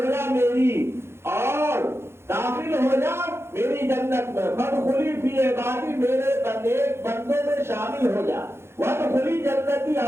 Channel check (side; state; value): left; late; 0.12 ms